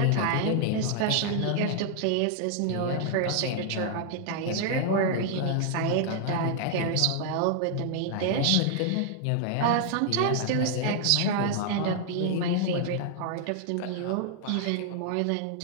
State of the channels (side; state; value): both; different; correlation 0.00